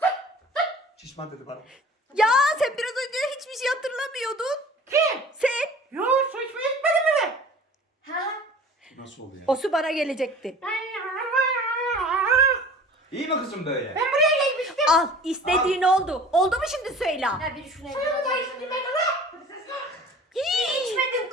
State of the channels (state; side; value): normal; both; correlation 0.44